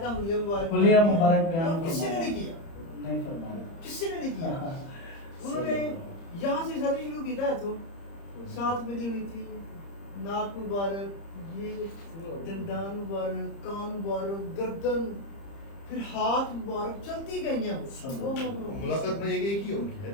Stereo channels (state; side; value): late; right; 30 ms